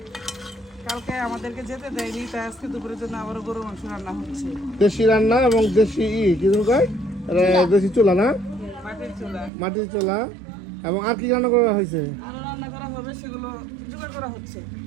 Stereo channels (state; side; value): drops out; left; at 9.5 s